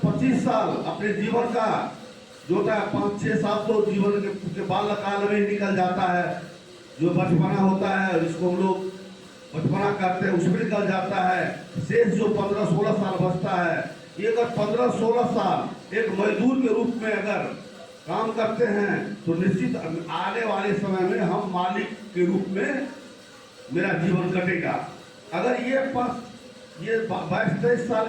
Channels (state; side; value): identical; both; correlation 1.00